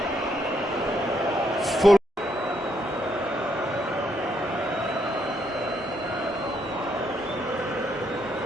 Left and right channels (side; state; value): both; normal; correlation 0.74